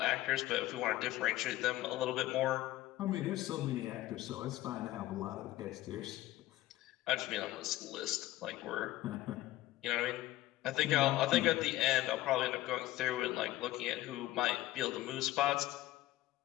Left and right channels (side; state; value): right; quieter; 15.9 dB